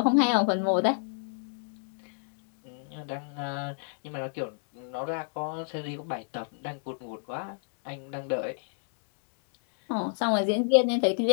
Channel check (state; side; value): silent; right; 58 dB below the other